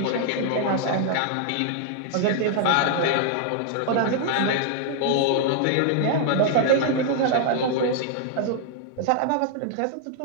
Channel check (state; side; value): different; both; correlation 0.00